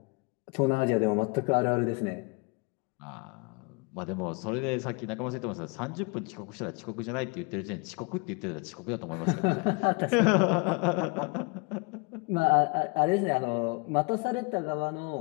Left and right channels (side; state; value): right; quieter; 30.4 dB